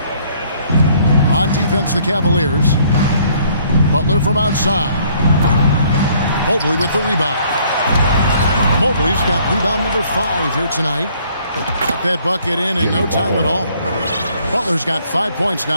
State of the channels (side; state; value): both; inverted; correlation -0.62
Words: On defense, the Cavaliers. Butler from outside. Mobley with the rebound. Mobley's got rebound number 5 here tonight. Got that bucket in no time at all. Butler's got 5 points